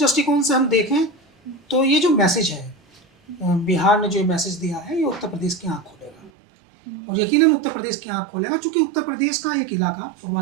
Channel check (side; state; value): left; drops out; at 6.3 s